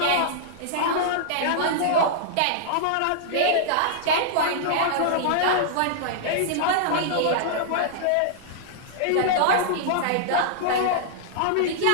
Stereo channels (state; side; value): different; both; correlation -0.01